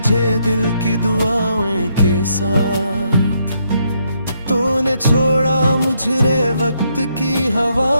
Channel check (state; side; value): inverted; both; correlation -0.75